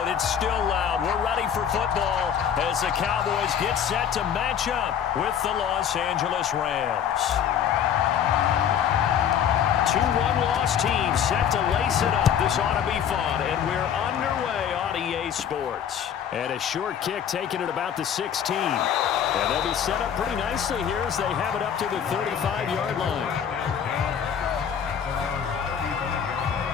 It's still loud. We're ready for football as the Cowboys get set to match up with the Los Angeles Rams. Two one-loss teams set to lace it up. This ought to be fun, and we're underway on EA Sports. And a short kick taken at about the 16. And they'll be set up pretty nicely here as they have it up to the 35-yard line.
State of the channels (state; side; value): quieter; right; 8.6 dB